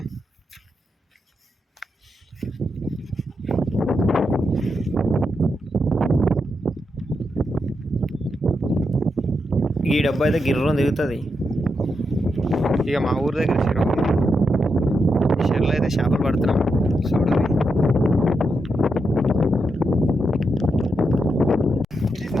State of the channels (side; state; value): both; normal; correlation 0.84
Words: ఈ డబ్బా అయితే గిర్రం తిరుగుతుంది. ఇక మా ఊరి దగ్గర చెరువు, ఈ చెరువులో అయితే చేపలు పడుతున్నాం. చూడాలి.